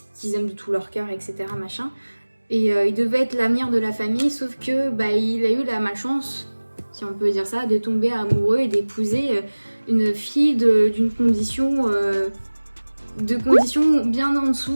qu'ils aiment de tout leur cœur, etc. machin. Et il devait être l'avenir de la famille, sauf que il a eu la malchance, si on peut dire ça, de tomber amoureux et d'épouser une fille d'une condition bien en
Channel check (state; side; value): inverted; both; correlation -1.00